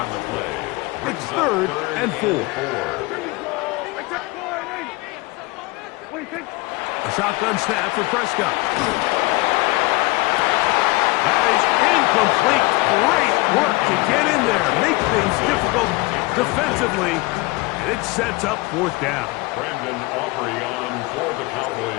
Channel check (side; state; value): right; quieter; 23.4 dB